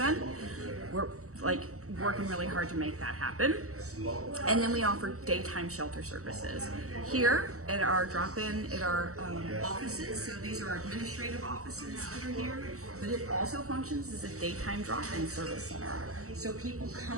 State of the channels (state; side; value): late; left; 0.65 ms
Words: We're working really hard to make that happen. And then we offer daytime shelter services here at our drop-in, at our offices. So these are our administrative offices that are here, but it also functions as a daytime drop-in service center. So people